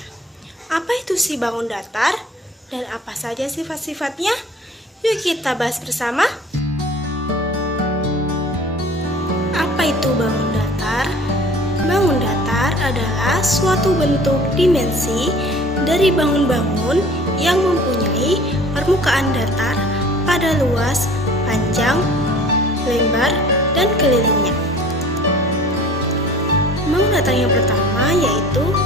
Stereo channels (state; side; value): normal; both; correlation 0.47